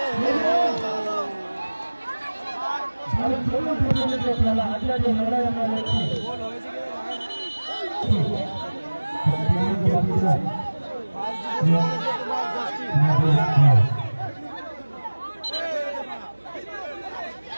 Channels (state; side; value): inverted; both; correlation -1.00